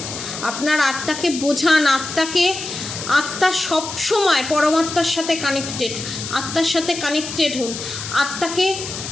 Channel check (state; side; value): noise; left; hiss, 8 dB below the sound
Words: আত্মাকে বোঝান, আত্মা সবসময় পরমাত্মার সাথে কানেক্টেড, আত্মার সাথে কানেক্টেড হন, আত্মাকে